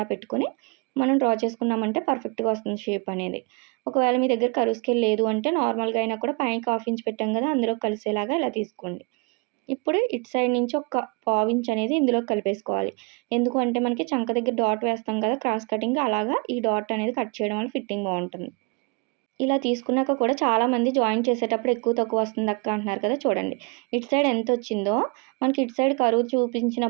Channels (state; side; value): quieter; left; 30.7 dB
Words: పెట్టుకొని మనం డ్రా చేసుకున్నామంటే పర్ఫెక్ట్గా వస్తుంది షేప్ అనేది. ఒకవేళ మీ దగ్గర కరువు స్కేల్ లేదు అంటే నార్మల్గా అయినా కూడా పైకి 1/2 ఇంచ్ పెట్టాం కదా, అందులో కలిసేలాగా ఇలా తీసుకోండి. ఇప్పుడు ఇటు సైడ్ నుంచి ఒక 1/4 ఇంచ్ అనేది ఇందులో కలిపేసుకోవాలి. ఎందుకు అంటే మనకి చంక దగ్గర డాట్ వేస్తాం కదా క్రాస్ కటింగ్, అలాగా ఈ డాట్ అనేది కట్ చేయడం వల్ల ఫిట్టింగ్ బాగుంటుంది. ఇలా తీసుకున్నాక కూడా చాలామంది జాయిన్ చేసేటప్పుడు ఎక్కువ తక్కువ వస్తుంది అక్క అంటున్నారు కదా, చూడండి ఇటు సైడ్ ఎంత వచ్చిందో మనకి ఇటు సైడ్ కరువు